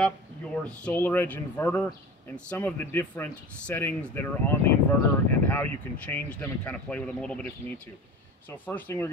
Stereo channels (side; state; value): both; normal; correlation 0.36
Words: your SolarEdge inverter and some of the different settings that are on the inverter and how you can change them and kind of play with them a little bit if you need to. So first thing we're